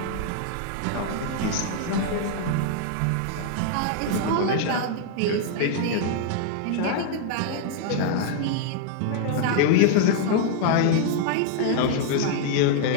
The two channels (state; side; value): different; both; correlation -0.01